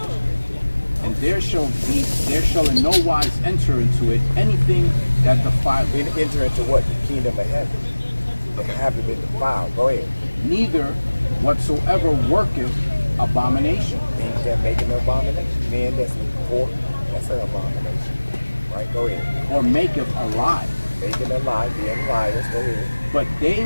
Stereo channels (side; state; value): both; inverted; correlation -1.00